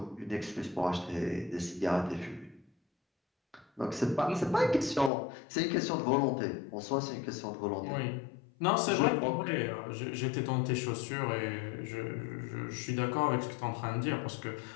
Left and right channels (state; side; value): drops out; right; at 5.1 s